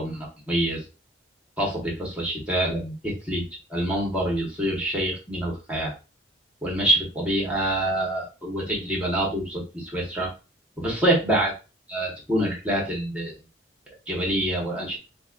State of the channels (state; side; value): normal; both; correlation 0.46